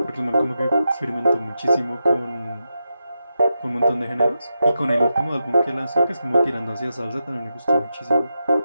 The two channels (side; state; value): both; inverted; correlation -0.88